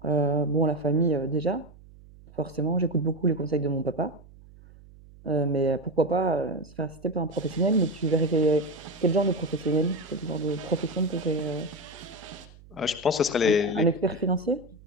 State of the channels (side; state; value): right; noise; hum, 22 dB below the sound